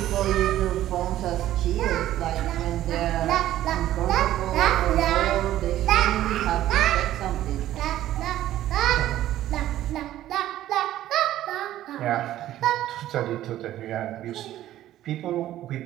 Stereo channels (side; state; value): left; quieter; 13.4 dB